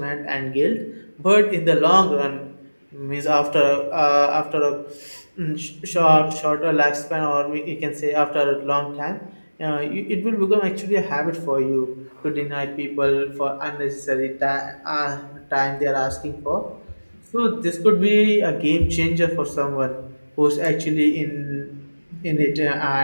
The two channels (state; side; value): inverted; both; correlation -1.00